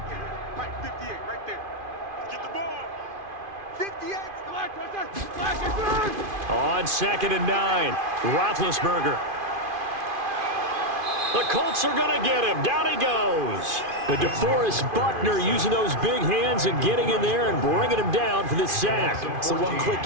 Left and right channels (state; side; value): late; left; 2.5 ms